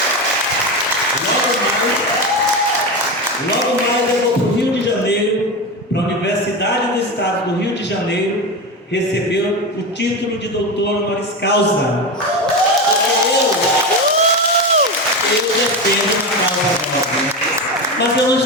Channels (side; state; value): both; normal; correlation 0.19